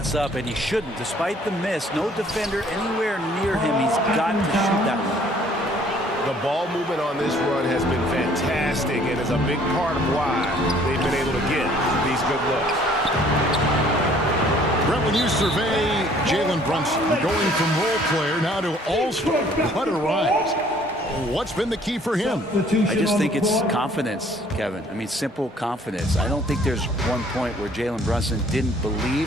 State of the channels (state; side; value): normal; both; correlation 0.58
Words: up, and he shouldn't. Despite the miss, no defender anywhere near him. He's got to shoot that one. The ball movement on this run has been fantastic and is a big part of why they've been able to get these good looks. Brett, when you survey Jalen Brunson going from role player now to all-star, what a rise. What's been the key for him? I just think it's confidence, Kevin. I mean, simple confidence. I don't think there's one point where Jalen Brunson didn't